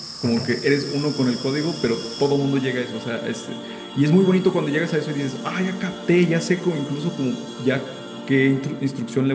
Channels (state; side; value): identical; both; correlation 1.00